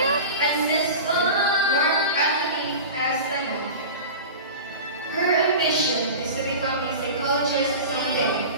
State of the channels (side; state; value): both; inverted; correlation -0.32